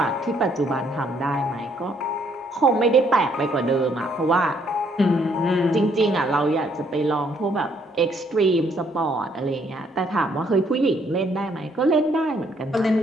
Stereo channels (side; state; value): both; normal; correlation 0.68